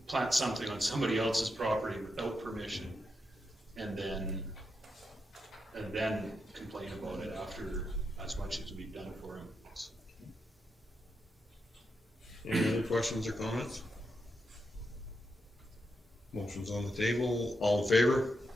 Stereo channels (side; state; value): both; normal; correlation 0.85